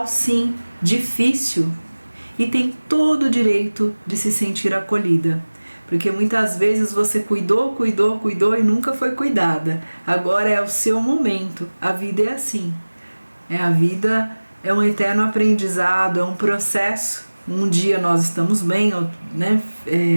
sim, difícil, e tem todo o direito de se sentir acolhida. Porque muitas vezes você cuidou e nunca foi cuidada. Agora é o seu momento. A vida é assim. A vida é um eterno aprendizado, é um processo. Um dia nós estamos bem, né,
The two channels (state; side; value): inverted; both; correlation -1.00